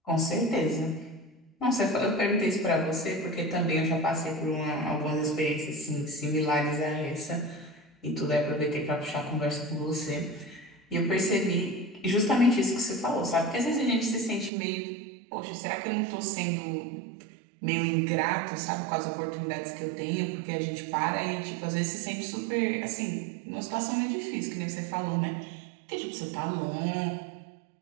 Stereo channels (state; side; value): drops out; left; at 14.5 s